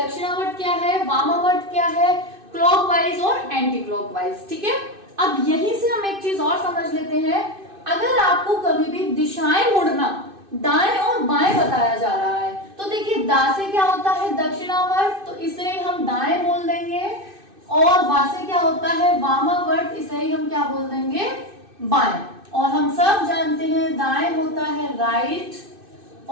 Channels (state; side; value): late; left; 2.6 ms